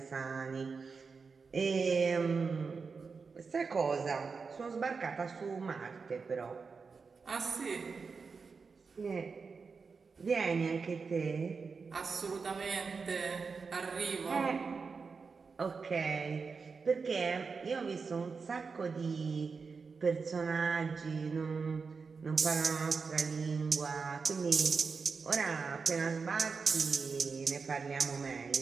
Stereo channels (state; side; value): quieter; left; 5.0 dB